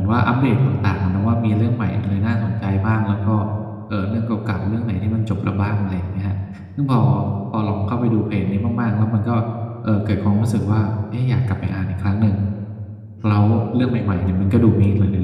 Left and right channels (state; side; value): identical; both; correlation 1.00